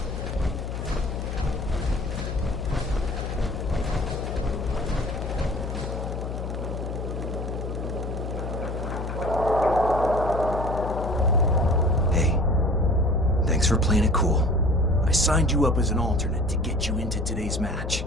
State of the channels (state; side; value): noise; left; hum, 5 dB below the sound